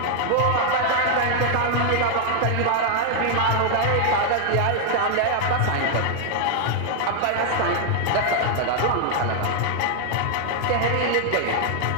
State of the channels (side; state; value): both; different; correlation 0.00